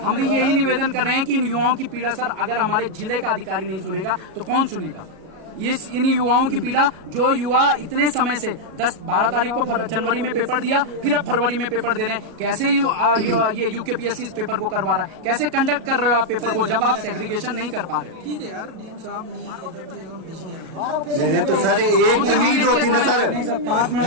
भी यही निवेदन कर रहे हैं कि इन युवाओं की पीड़ा सर अगर हमारे जिले का अधिकारी नहीं सुनेगा तो कौन सुनेगा? इन युवाओं की पीड़ा, जो युवा इतने समय से 10-12 तारीख को जनवरी में पेपर दिया, फिर अब फरवरी में पेपर दे रहे हैं, कैसे ये यूकेपीएससी इस पेपर को करवा रहा है? कैसे कंडक्ट कर रहे हो आप पेपर को जब आप सेग्रीगेशन नहीं कर पा रहे हो? ठीक है यार, डीएम साहब बिजी है। नहीं तो सर एक तो नीड होती ना सर, नहीं सर 5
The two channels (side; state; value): left; late; 37 ms